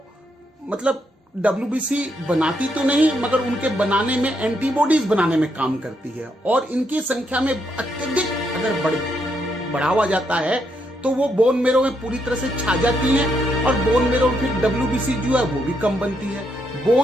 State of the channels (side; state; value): both; normal; correlation 0.78